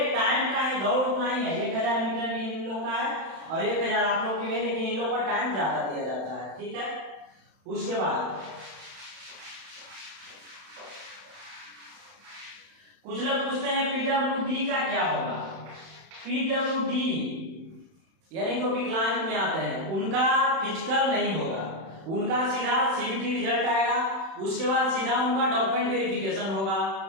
टाइम का है, दौड़ उतना ही है, 1000 मीटर भी इन लोग का है और 1000 आप लोग की भी, लेकिन इन लोग का टाइम ज्यादा दिया जाता है, ठीक है। उसके बाद कुछ लोग पूछते हैं PWD का क्या होगा। PWD यानी जो विकलांग में आते हैं उनका फिजिकल नहीं होगा, उनका सीधा CBT रिजल्ट आएगा, उसके बाद सीधा उनका डॉक्यूमेंट वेरिफिकेशन होगा,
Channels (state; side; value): late; left; 31 ms